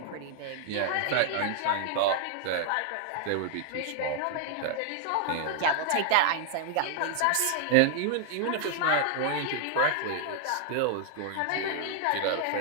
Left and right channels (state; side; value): different; both; correlation 0.00